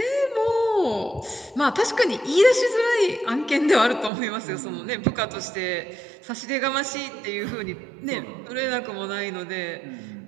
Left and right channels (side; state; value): left; drops out; at 4.1 s